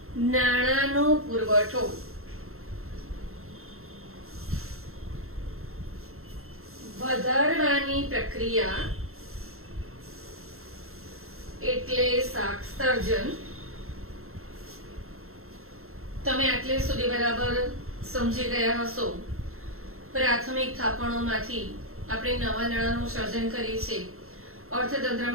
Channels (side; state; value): left; late; 0.62 ms